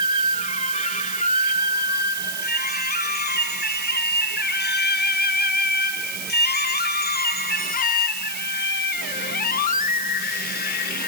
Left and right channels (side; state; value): right; noise; hiss, 5 dB below the sound